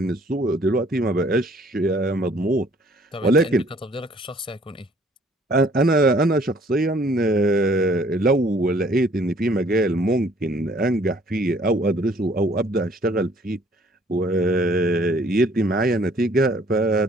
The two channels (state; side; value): normal; both; correlation 0.59